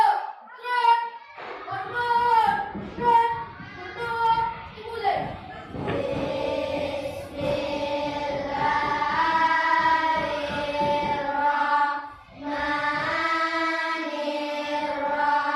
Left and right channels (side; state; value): both; identical; correlation 1.00